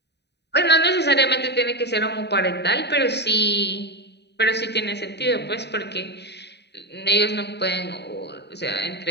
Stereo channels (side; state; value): right; late; 0.49 ms